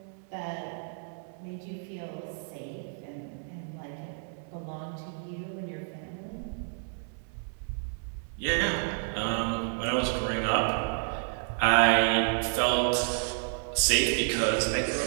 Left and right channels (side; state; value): left; silent; 58 dB below the other